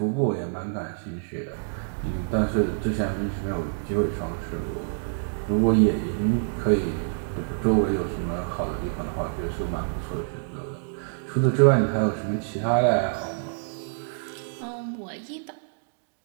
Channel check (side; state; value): left; silent; digital silence